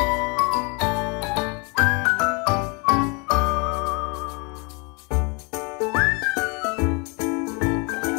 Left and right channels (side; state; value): right; quieter; 31.7 dB